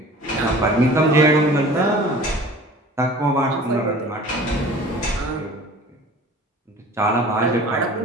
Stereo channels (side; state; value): both; normal; correlation 0.44